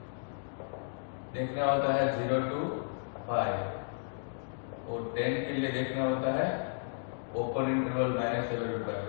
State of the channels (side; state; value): right; silent; digital silence